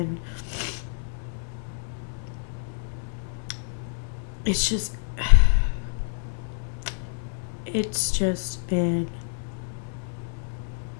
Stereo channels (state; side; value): silent; right; digital silence